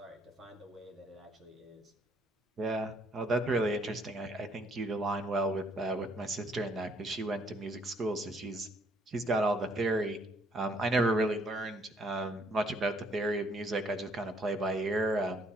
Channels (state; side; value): normal; both; correlation 0.66